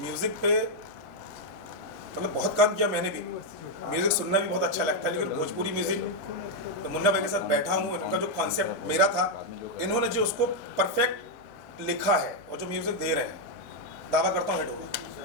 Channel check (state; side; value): normal; both; correlation 0.01